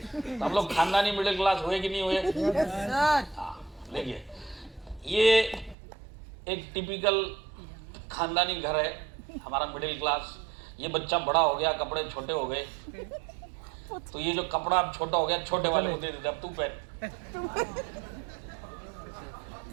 तो हम लोग खानदानी मिडिल क्लास हुए कि नहीं हुए? हाँ, देखिए ये एक टिपिकल खानदानी घर है हमारा मिडिल क्लास। ये बच्चा बड़ा हो गया, कपड़े छोटे हो गए, तो ये जो कपड़ा अब छोटा हो गया छोटे वाले को दे देते, अब तू पहन।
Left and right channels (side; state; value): left; drops out; at 5.8 s